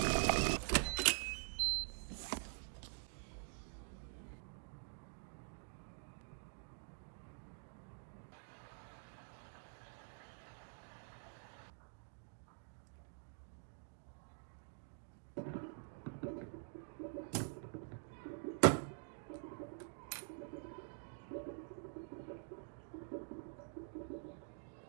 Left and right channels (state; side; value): silent; left; digital silence